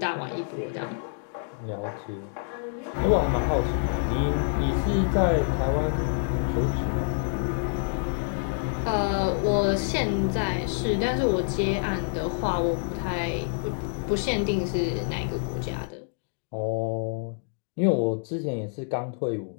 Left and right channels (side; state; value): right; silent; digital silence